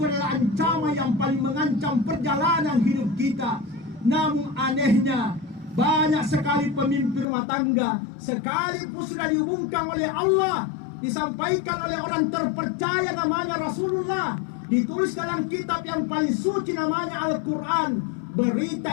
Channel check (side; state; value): right; drops out; at 7.2 s